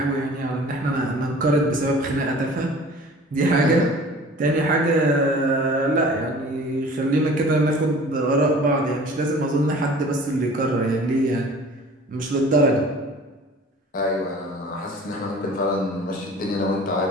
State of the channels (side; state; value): both; normal; correlation 0.45